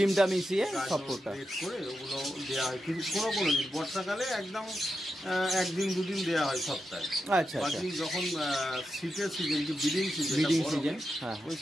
মিশিয়ে সব ফুডটা করে ওগুলো দেওয়া হয়। কিন্তু কোনো দিন বর্ষাকালে একদম 1-2 দিন দেওয়া হয় সপ্তাহে। আচ্ছা, বাকি যখন শীতের সিজন, যে ব্রিডিং সিজন, ওই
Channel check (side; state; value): both; normal; correlation 0.88